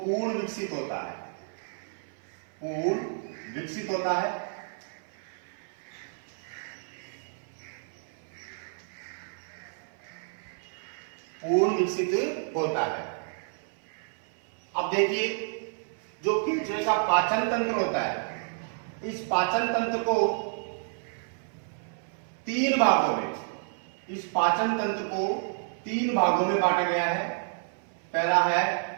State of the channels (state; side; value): silent; left; 58 dB below the other